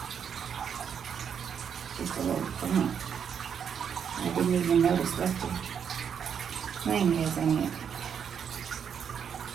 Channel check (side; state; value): left; quieter; 7.6 dB